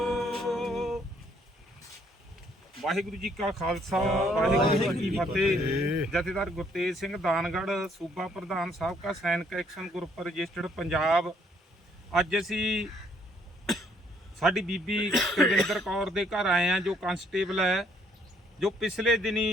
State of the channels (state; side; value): normal; both; correlation 0.66